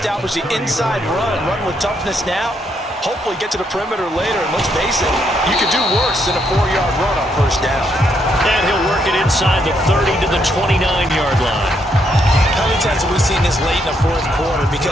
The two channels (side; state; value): both; normal; correlation 0.75